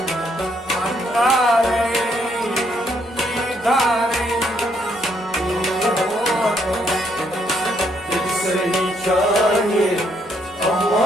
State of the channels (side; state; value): both; normal; correlation 0.72